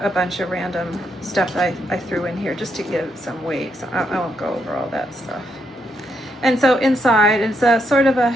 bunch of random stuff that I threw in here just to give it some weight, so I won't go over all that stuff. And so inside, it's a sort of a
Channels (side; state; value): both; normal; correlation 0.78